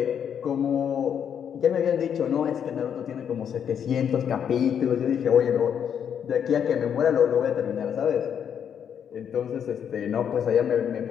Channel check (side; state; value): right; quieter; 8.3 dB